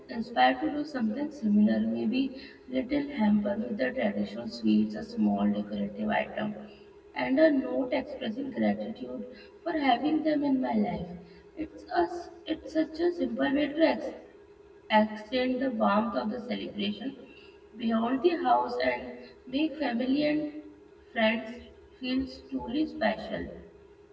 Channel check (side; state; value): both; identical; correlation 1.00